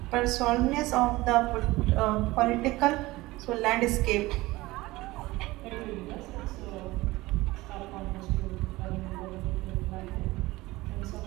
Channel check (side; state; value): left; quieter; 19.7 dB